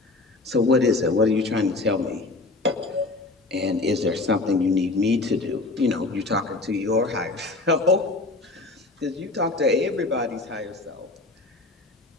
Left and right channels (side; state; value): right; quieter; 3.2 dB